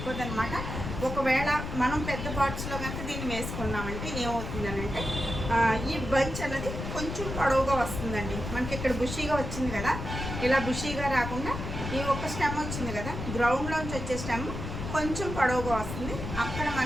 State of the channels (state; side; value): noise; left; rumble, 6 dB below the sound